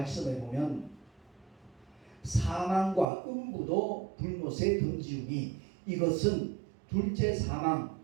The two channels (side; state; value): left; drops out; at 3.1 s